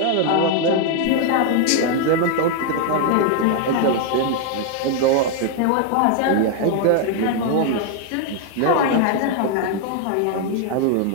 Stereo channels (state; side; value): different; both; correlation 0.00